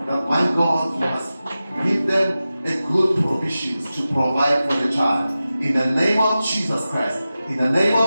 my God, you must give them a good provisions to provide for the child. In the name of Jesus Christ, in the name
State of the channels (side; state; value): both; inverted; correlation -0.94